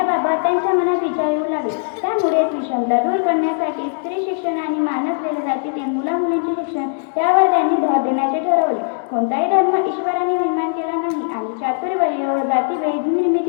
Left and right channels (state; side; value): silent; right; digital silence